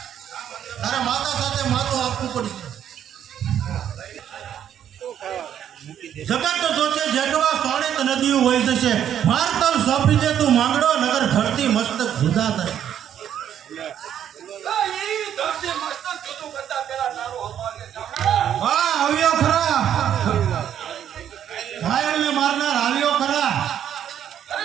તારા માતા સાથે માથું આપવું પડશે. જગત જોશે જેટવા સોણિત નદીઓ વહી જશે, ભારતર સોંપી દે તું માંગડો, નગર ધરતી મસ્તક જુદા થાય. હા, આવ્યો ખરા, ઘાયલને મારનાર આવ્યો ખરા.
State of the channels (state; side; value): quieter; left; 9.8 dB